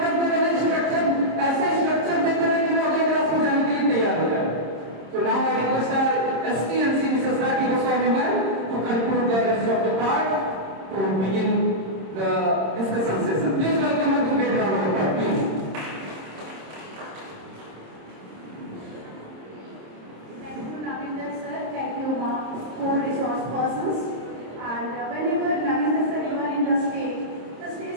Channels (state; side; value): late; left; 26 ms